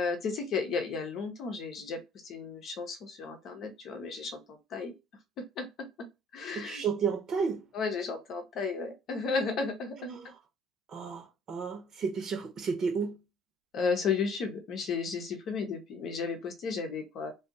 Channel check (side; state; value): both; normal; correlation 0.56